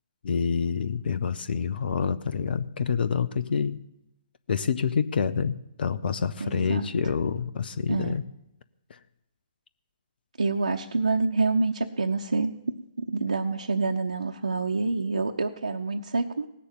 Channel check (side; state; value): both; inverted; correlation -0.79